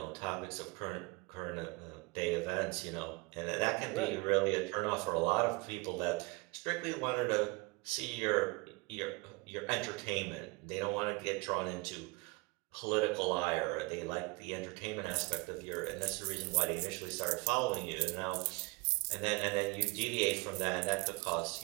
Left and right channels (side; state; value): left; quieter; 26.4 dB